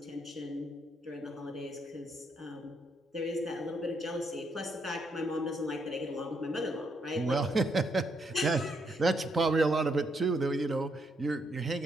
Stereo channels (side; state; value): both; normal; correlation 0.76